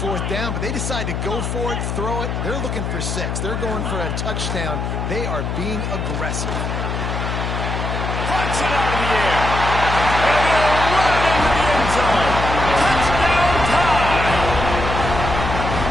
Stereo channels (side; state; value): left; noise; hum, 3 dB below the sound